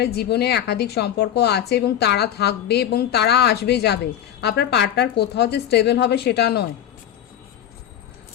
জীবনে একাধিক সম্পর্ক আছে এবং তারা থাকবে এবং তারা আসবে যাবে। আপনার পার্টনার কোথাও যে স্টেবল হবে সেটা নয়,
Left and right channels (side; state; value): right; quieter; 10.5 dB